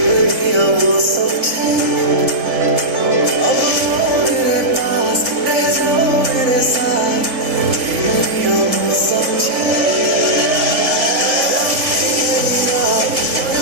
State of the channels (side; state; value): left; late; 3.6 ms